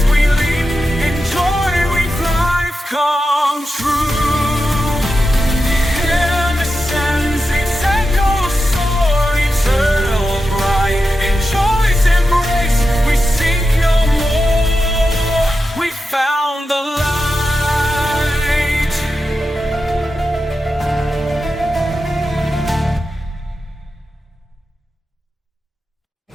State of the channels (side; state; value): both; normal; correlation 0.90